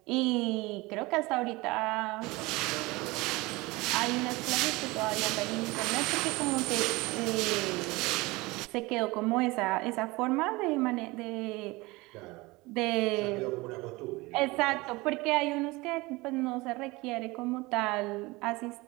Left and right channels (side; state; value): left; quieter; 22.6 dB